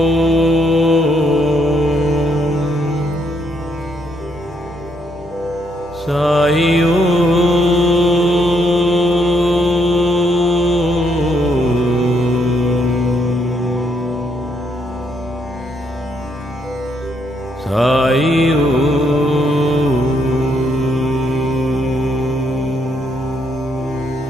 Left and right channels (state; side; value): normal; both; correlation 0.73